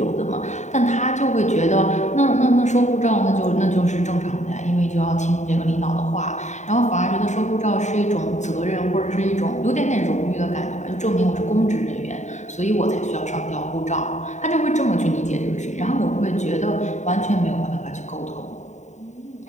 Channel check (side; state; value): right; late; 0.34 ms